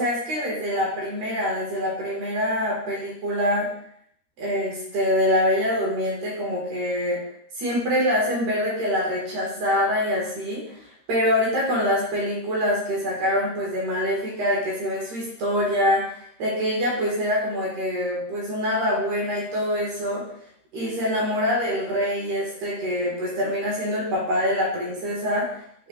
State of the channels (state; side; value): late; left; 13 ms